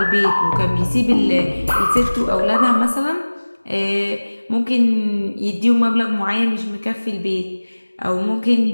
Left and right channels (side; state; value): both; inverted; correlation -1.00